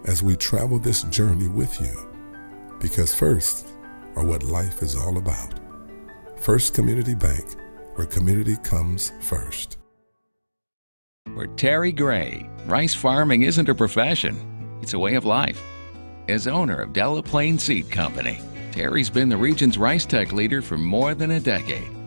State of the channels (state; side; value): inverted; both; correlation -1.00